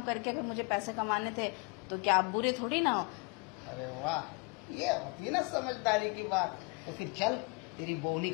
करके अगर मुझे पैसे कमाने थे तो क्या आप बुरे थोड़ी ना हो? अरे वाह, ये होती है ना समझदारी की बात। तो फिर चल, तेरी बोनी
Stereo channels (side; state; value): right; quieter; 31.4 dB